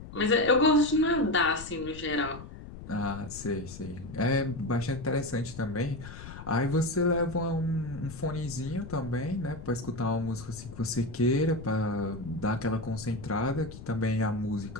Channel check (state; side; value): noise; left; rumble, 13 dB below the sound